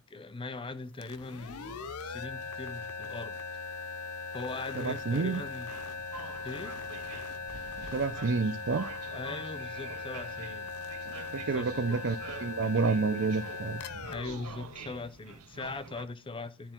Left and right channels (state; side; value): normal; both; correlation 0.23